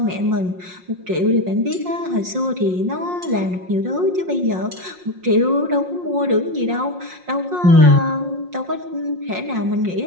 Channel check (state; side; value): late; left; 5.6 ms